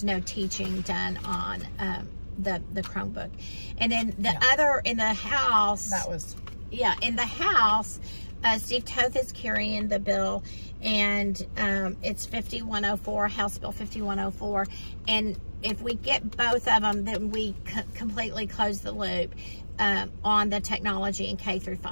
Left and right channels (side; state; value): both; inverted; correlation -1.00